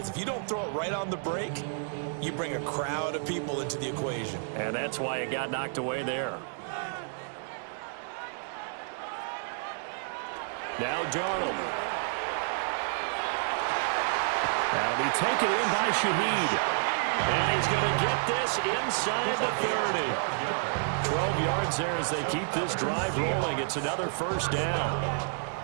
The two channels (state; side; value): silent; left; digital silence